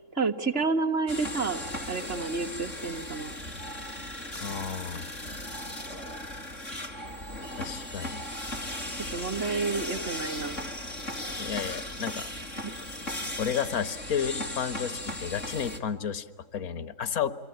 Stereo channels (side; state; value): right; late; 3.6 ms